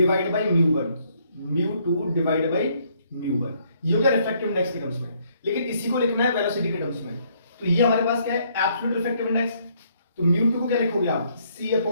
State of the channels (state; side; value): inverted; both; correlation -0.69